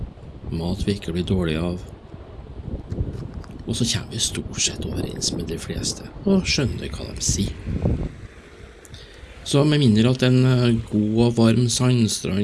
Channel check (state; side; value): identical; both; correlation 1.00